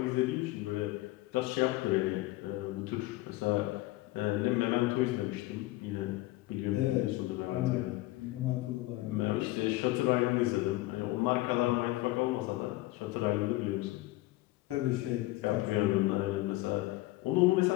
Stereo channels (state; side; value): quieter; right; 18.4 dB